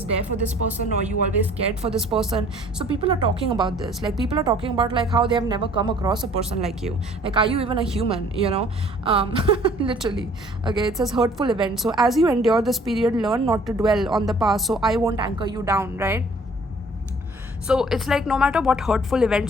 there for this person, or you always cared for this person. So people are talking about this. Like, people are talking about, like, how they have never come across a person like you. Like, are you even a human? Literally. Okay, it says hurtful event. So as you endure this period, learn not to dwell on the past, so I won't anchor you down, right? So it's like, no matter what hurtful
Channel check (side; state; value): both; normal; correlation 0.55